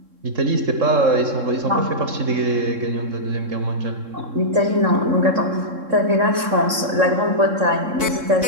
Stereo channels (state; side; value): late; left; 3.7 ms